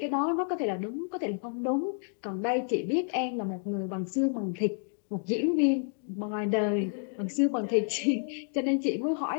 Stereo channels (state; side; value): silent; right; 57 dB below the other